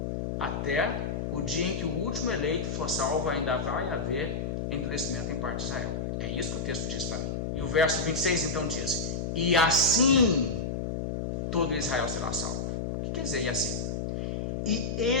Até o dia em que o último eleito for salvo, ainda vai haver endurecimento em parte de Israel. É isso que o texto diz para mim. E o verso 26 então diz: e assim todo Israel será salvo. O que quer dizer e assim? E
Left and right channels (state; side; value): noise; left; hum, 2 dB below the sound